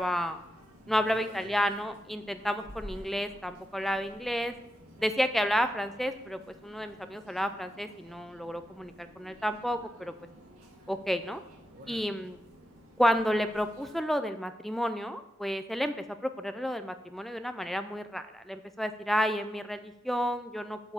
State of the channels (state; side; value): normal; both; correlation 0.88